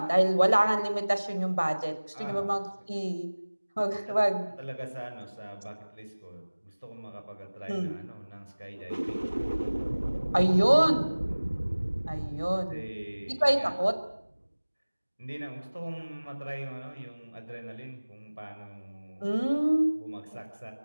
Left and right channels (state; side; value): inverted; both; correlation -1.00